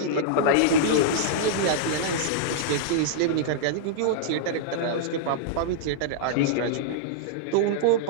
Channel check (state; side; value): different; both; correlation -0.02